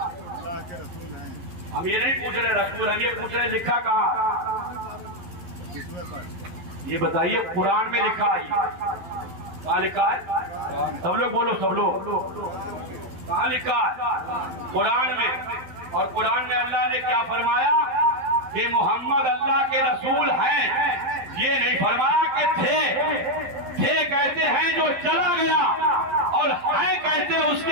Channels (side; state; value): left; late; 11 ms